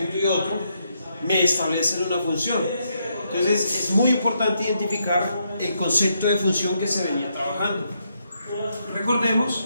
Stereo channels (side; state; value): both; inverted; correlation -0.78